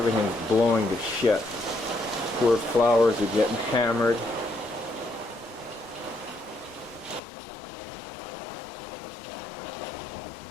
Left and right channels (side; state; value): right; drops out; at 7.2 s